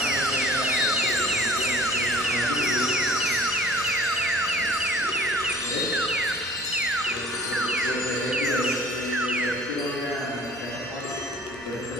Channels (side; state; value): both; normal; correlation 0.51